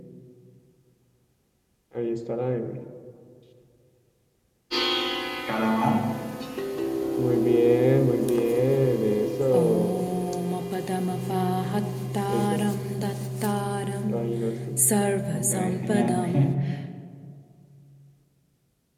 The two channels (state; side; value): identical; both; correlation 1.00